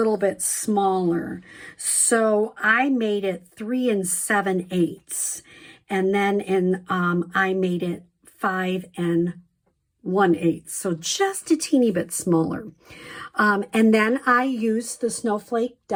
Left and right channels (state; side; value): identical; both; correlation 1.00